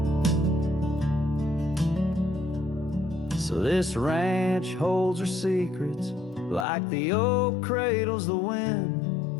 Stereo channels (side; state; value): right; drops out; at 6.7 s